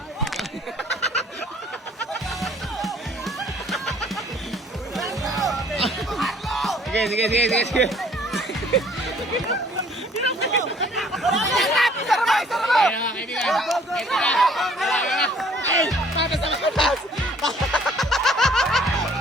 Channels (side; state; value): both; normal; correlation 0.57